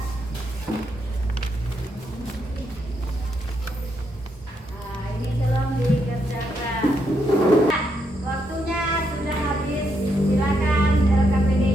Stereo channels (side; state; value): both; normal; correlation 0.79